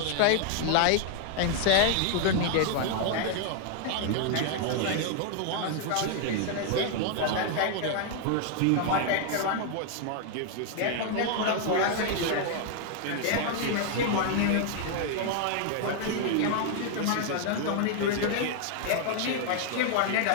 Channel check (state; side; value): different; both; correlation 0.00